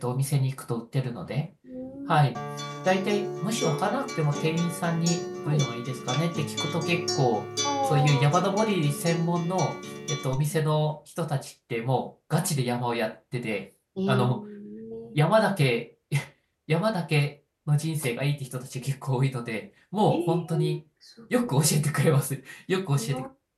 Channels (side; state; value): both; identical; correlation 1.00